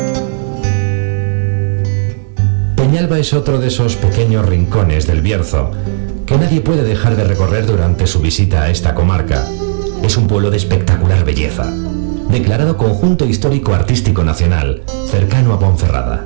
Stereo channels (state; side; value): silent; left; digital silence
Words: Peñalba es otro de esos pequeños rincones del Bierzo que nadie puede dejar de recorrer durante su visita a esta comarca. Es un pueblo de espectacular belleza, declarado Conjunto Histórico Artístico Nacional, cercano a Ponferrada.